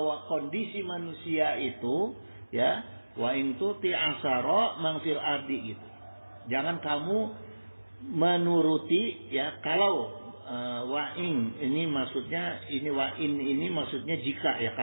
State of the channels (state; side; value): inverted; both; correlation -1.00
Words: kondisi manusia itu, ya, wa in tuti asara man fil ardi gitu. Jangan kamu menuruti, ya, kalau wa in ini maksudnya ini maksudnya jika, ya,